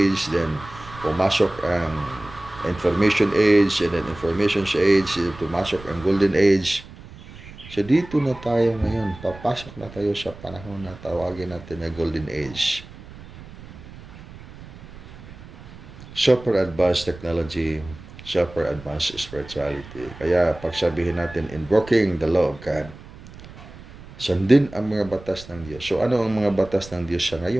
then pumasok ang Information Age, and then Information Age, pumasok ang Golden Age. So dito na tayo ngayon, papasok na tayo sa panahon na tawagin natin na Golden Age. Super advanced technology, super advanced spirituality. Kaya pagsabihin natin, invoking the law of God, sundin ang mga batas ng Diyos. So ano ang mga batas ng Diyos sa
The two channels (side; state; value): right; noise; rumble, 17 dB below the sound